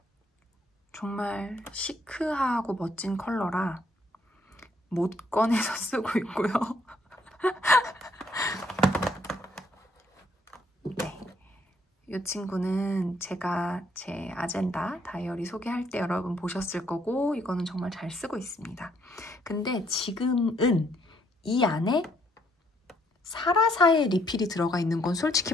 정말 시크하고 멋진 컬러라 못 꺼내서 쓰고 있고요. 네, 이 친구는 제가 제 아젠다 다이어리 소개할 때 여러분 보셨을 거고, 이거는 정말 잘 쓰고 있습니다. 근데 지금은 이 안에 사라사의 리필이 들어가 있는 건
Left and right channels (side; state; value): both; normal; correlation 0.69